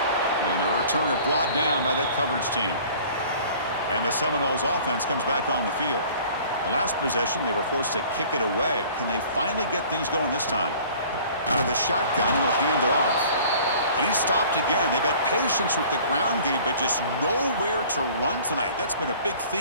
And the returner brought down by that coverage team. And the Seminoles offense comes back on the field. The last possession, they were forced to kick it away. Can they finally get things going this time? Out of the shotgun, he'll hand it off. And he stopped again. They've had patience with the ground game, but just nowhere to run tonight. That's been a big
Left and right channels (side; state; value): both; inverted; correlation -0.49